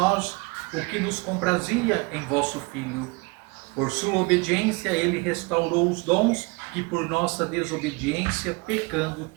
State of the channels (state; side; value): quieter; left; 27.4 dB